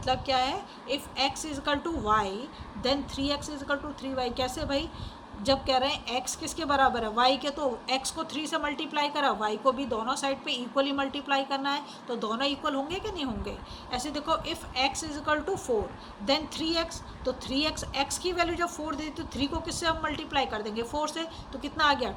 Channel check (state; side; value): identical; both; correlation 1.00